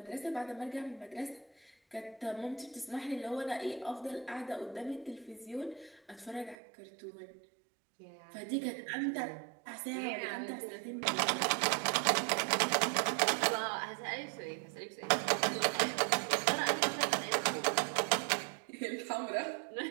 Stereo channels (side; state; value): left; drops out; at 6.6 s